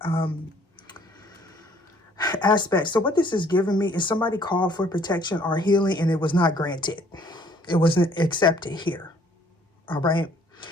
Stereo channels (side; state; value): both; normal; correlation 0.60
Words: aspect. So what this is giving me is somebody called for protection or healing and it was not granted. It wasn't accepted here. All right.